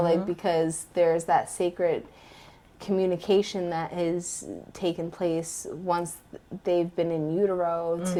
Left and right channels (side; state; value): both; identical; correlation 1.00